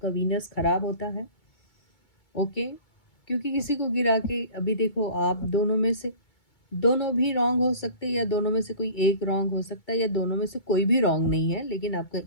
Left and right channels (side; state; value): right; late; 2.2 ms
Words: वीनस खराब होता है, ओके, क्योंकि किसी को गिरा के, अभी देखो आप दोनों में से दोनों भी रॉन्ग हो सकते हैं, या दोनों में से कोई एक रॉन्ग हो सकता है, या दोनों में से कोई भी रॉन्ग नहीं है, लेकिन आपका